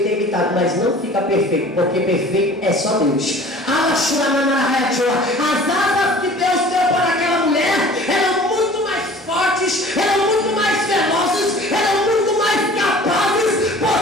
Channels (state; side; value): normal; both; correlation 0.46